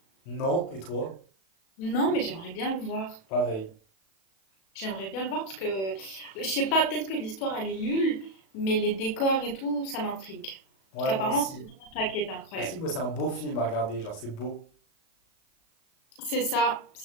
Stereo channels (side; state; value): right; late; 36 ms